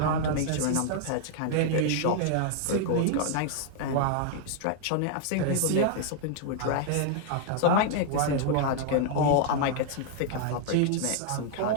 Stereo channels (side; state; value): both; different; correlation 0.00